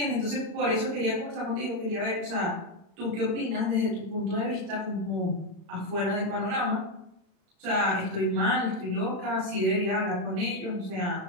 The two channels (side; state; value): left; late; 35 ms